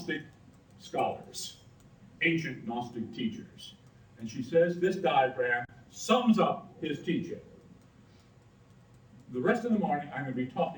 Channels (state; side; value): identical; both; correlation 1.00